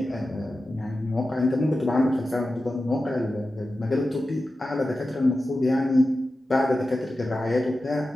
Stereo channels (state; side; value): normal; both; correlation 0.93